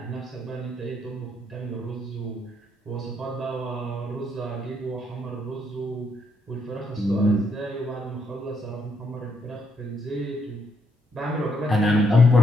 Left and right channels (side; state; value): both; normal; correlation 0.76